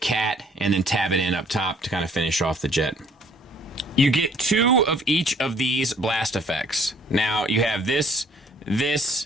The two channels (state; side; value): normal; both; correlation 0.59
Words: and then tab it in up top to kind of finish off the jet. You get 2 of each of these blast effects. Now, you have this,